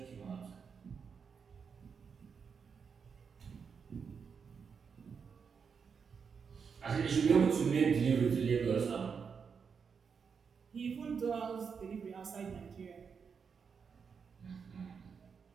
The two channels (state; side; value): quieter; left; 6.1 dB